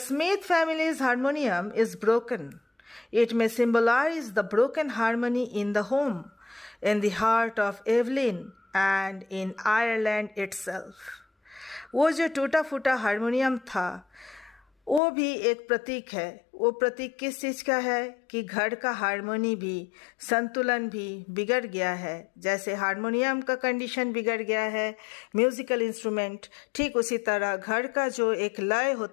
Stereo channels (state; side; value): drops out; right; at 15.0 s